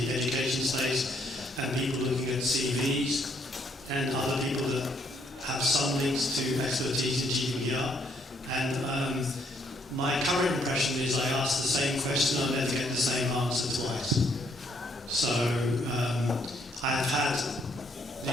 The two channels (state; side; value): normal; both; correlation 0.70